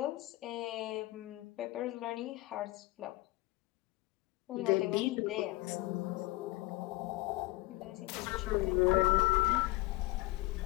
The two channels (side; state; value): right; quieter; 19.7 dB